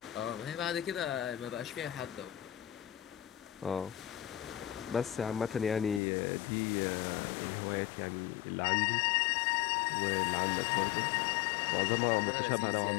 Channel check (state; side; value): drops out; right; at 6.0 s